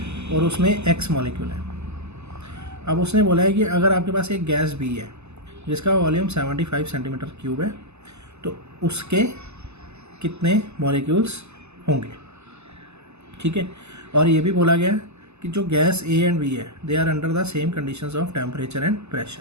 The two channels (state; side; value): late; left; 0.81 ms